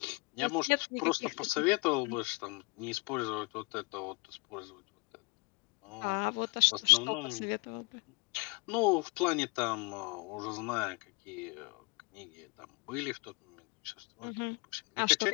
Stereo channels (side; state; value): right; quieter; 30.7 dB